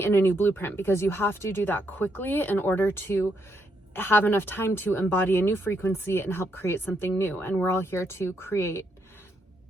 a new blueprint, because you have to do that quickly in order to have enough time to embody a new frequency and help create something new. And we're all here to create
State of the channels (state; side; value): normal; both; correlation 0.77